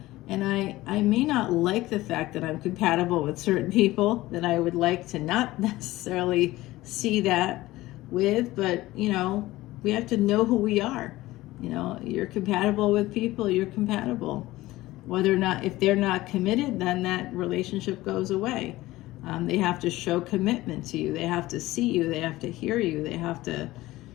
And I may not like the fact that I'm compatible with certain people that I would like to not necessarily see that with, but we have to know who we are. You're compatible with people, you're compatible. Whether or not, if they're not committed, then that relationship goes away. They have to show commitment to you. They have to see you. They have to hear you. They have to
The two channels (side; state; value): right; quieter; 17.7 dB